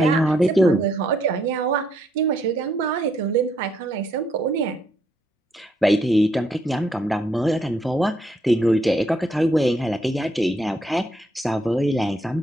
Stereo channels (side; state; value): both; normal; correlation 0.73